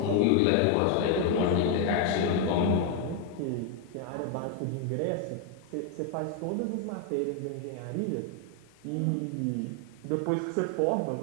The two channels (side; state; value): both; different; correlation 0.01